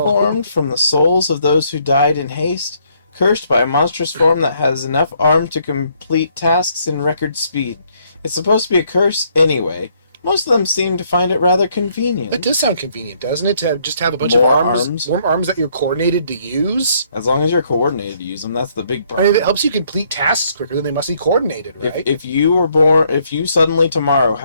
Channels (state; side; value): inverted; both; correlation -0.69